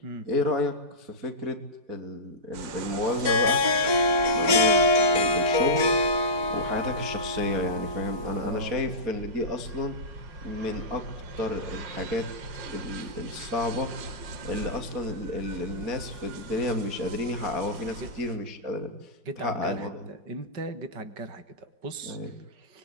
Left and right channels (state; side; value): late; left; 4.5 ms